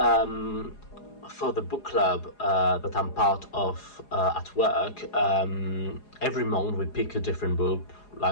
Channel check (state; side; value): late; right; 4.8 ms